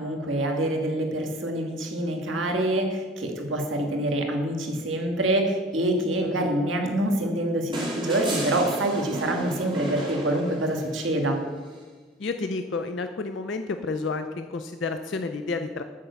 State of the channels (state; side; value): normal; both; correlation 0.39